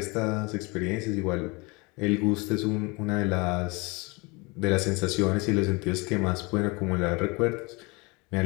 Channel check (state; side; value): quieter; right; 27.0 dB